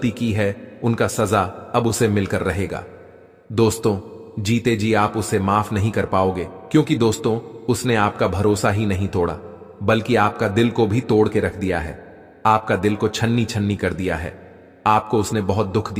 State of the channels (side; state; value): both; identical; correlation 1.00